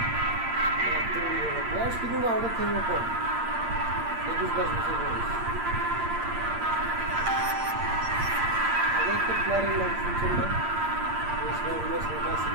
বয়স কিন্তু আমাদের থেকে কম 21-22 বছর বয়স আগে একটা প্লেয়ারের নাম শুনছেন না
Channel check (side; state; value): left; late; 8.6 ms